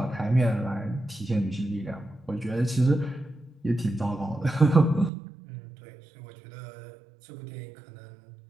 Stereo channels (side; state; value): left; drops out; at 5.1 s